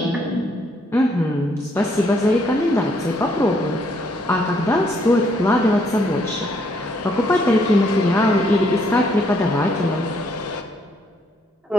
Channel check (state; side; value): normal; both; correlation 0.70